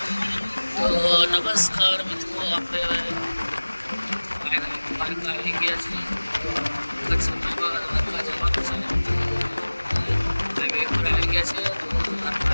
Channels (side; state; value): both; inverted; correlation -1.00